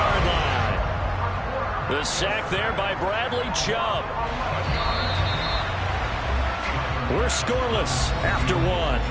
line. The sack there by Bradley Chubb. We're scoreless after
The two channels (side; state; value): both; identical; correlation 1.00